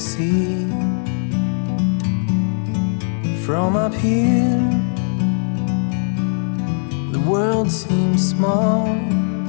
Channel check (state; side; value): silent; right; digital silence